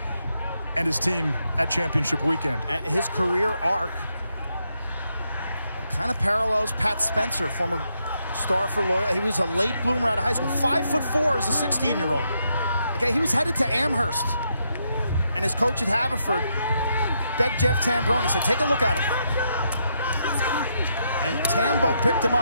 and his team at championship weekend. And his career arc kind of parallels Pat Spencer, former star for Loyola. He was a late bloomer out of high school. 5'4" as a 16-year-old. Okay, he was headed to Amherst. And his coach at Haverford begged Jeff Tambroni, said, take a look at him. And Tambo picked him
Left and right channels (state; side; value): inverted; both; correlation -0.80